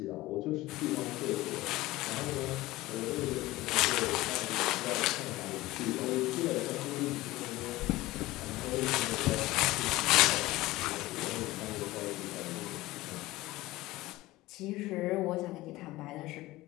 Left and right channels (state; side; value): quieter; right; 18.4 dB